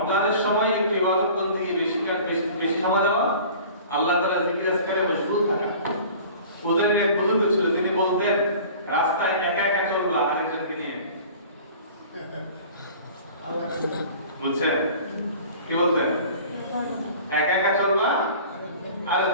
সময় একটু ইবাদত বন্দেগী বেশি সময় দেওয়া, আল্লাহ তাআলা জিকির আজকারে মশগুল থাকা। ওদের এক বুজুর্গ ছিল, তিনি বলতেন রাস্তায় একা একা চলবা আরেকজনকে নিয়ে। বুঝছেন কি বলতেন? একা একা চলবা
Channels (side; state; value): both; inverted; correlation -0.44